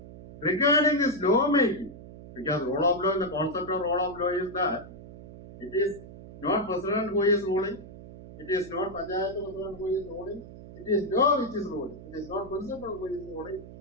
regarding this lawmaking, because rule of law, the concept of rule of law is that it is not president who is ruling, it is not Panchayat president who is ruling, it is law which is ruling, it is not principal who is ruling,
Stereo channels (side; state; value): right; noise; hum, 16 dB below the sound